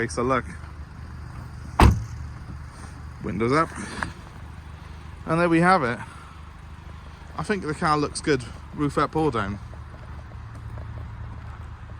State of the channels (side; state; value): both; identical; correlation 1.00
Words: look. Windows up, and there we have it. I think the car looks good, roof up or down.